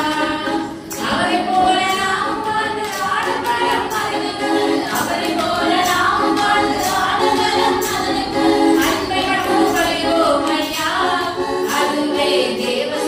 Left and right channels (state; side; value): identical; both; correlation 1.00